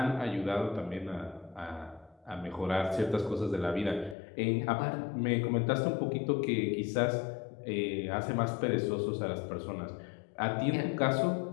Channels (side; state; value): right; drops out; at 4.2 s